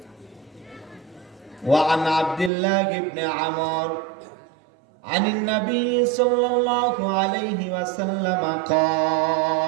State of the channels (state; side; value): drops out; left; at 2.5 s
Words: وعن عبد الله بن عمرو عن النبي صلى الله عليه وسلم